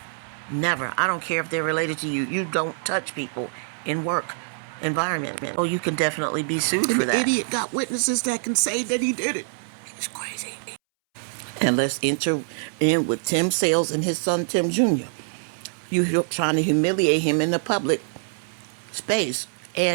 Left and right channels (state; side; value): silent; left; 62 dB below the other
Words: Never. I don't care if they're related to you. You don't touch people in work environment. Oh, you can definitely be sued for that. The idiot got witnesses that can say that he did it. He's crazy. And let's enter in with Tim Sales and his son Tim Jr. You're trying to humiliate him in the public space,